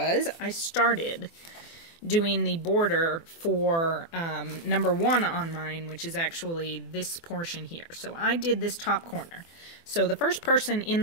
I started doing the border for number 1 on mine, which is actually this portion here. So I did this top corner. So the first person in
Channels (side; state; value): right; late; 24 ms